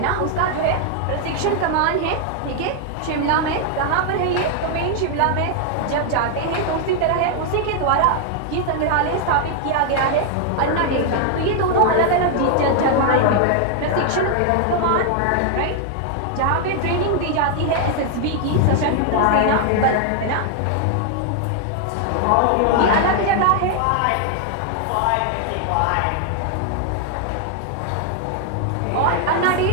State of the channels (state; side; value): different; both; correlation 0.00